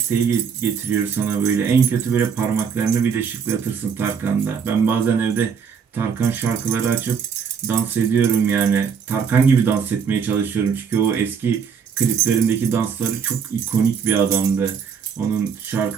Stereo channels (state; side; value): quieter; left; 6.7 dB